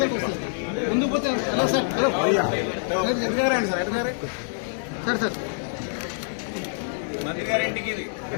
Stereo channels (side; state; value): right; silent; digital silence